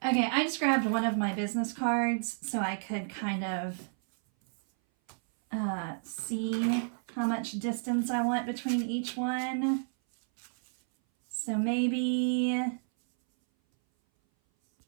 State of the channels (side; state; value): left; silent; 57 dB below the other